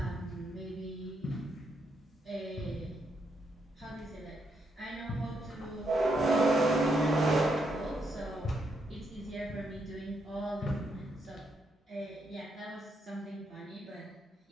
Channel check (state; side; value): normal; both; correlation 0.78